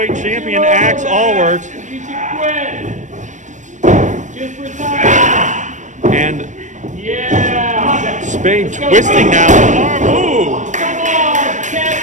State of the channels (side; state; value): left; late; 0.35 ms